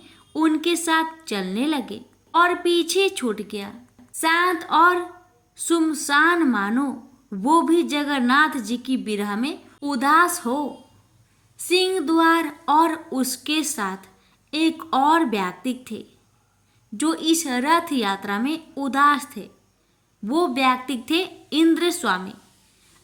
उनके साथ चलने लगे और पीछे छूट गया। शांत और सुमसान मानो वो भी जगन्नाथ जी की विरह में उदास हो। सिंह द्वार और उसके साथ एक और व्यक्ति थे जो इस रथ यात्रा में उदास थे। वो व्यक्ति थे इंद्र स्वामी।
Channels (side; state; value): both; identical; correlation 1.00